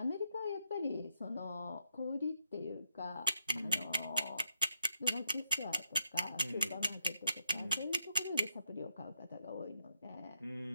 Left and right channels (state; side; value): inverted; both; correlation -0.79